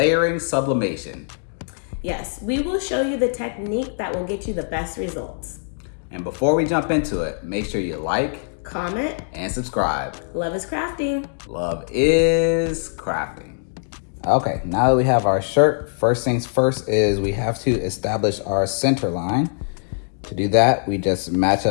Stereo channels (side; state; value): right; silent; digital silence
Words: sublimation. Yes, we will show you the technique that will get you the best results. And before we jump into it, make sure you like, comment, and subscribe. Love is crafting. Love is crafting. Okay, now that we have our shirt, first things first is we have to establish our center line. To do that, we just match